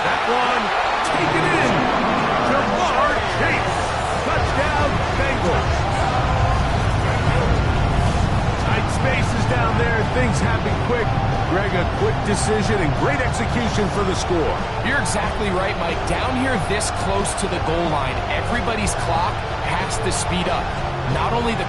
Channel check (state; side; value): identical; both; correlation 1.00